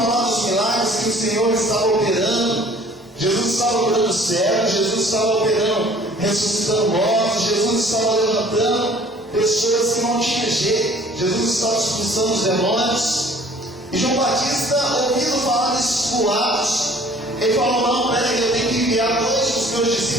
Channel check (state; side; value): normal; both; correlation 0.52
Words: dos milagres que o Senhor estava operando. Jesus estava curando cegos, Jesus estava operando, ressuscitando mortos, Jesus estava levantando pessoas que não tinham jeito, Jesus estava expulsando os demônios. E João Batista, ouvindo falar desses boatos, ele falou: não, peraí, eu tenho que enviar dois dos meus